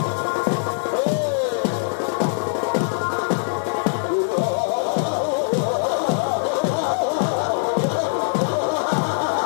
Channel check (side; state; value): right; silent; 60 dB below the other